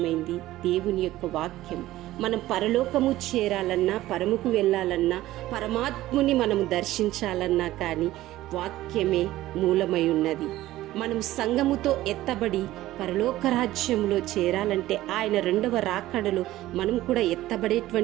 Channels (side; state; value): left; quieter; 15.7 dB